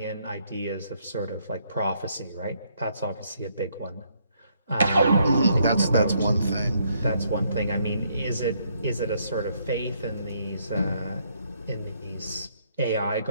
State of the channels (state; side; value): inverted; both; correlation -0.71